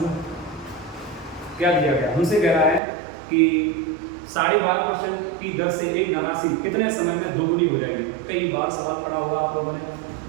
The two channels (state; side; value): drops out; left; at 2.8 s